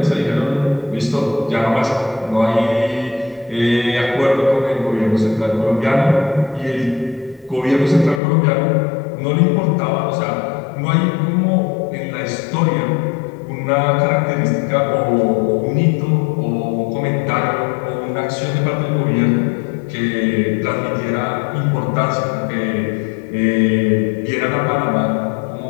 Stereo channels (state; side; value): drops out; right; at 8.2 s